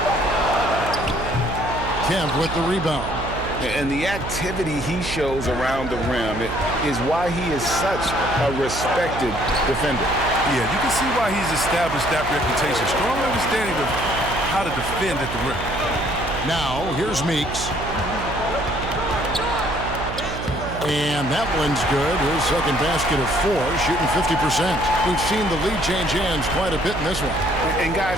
Kemp with the rebound. And the activity he shows around the rim is why he is such a respected defender. Yeah, you can see why he's established that reputation. Strong understanding of how to defend at the rim. Now, here's Meeks. And that one's good. His second basket of 4, shooting 50%. We've seen the lead change hands quite a bit in this one. And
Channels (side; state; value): right; noise; hum, 8 dB below the sound